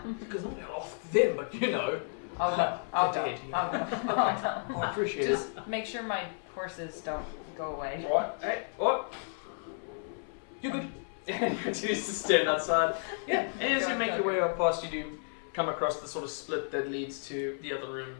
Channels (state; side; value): silent; right; 56 dB below the other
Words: Because I'm going to ask them, but you know. I'll go. I'll go. Indeed, yeah. I'll go. I'll go. I appreciate Just make sure my horses don't go away. it. What? Hey, what? You good? And you continue to stand outside. Yeah, and as you make your way up past, you do come across the sort of split that leads to the other